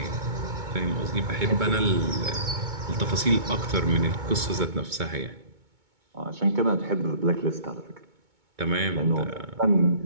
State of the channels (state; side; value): late; left; 2.2 ms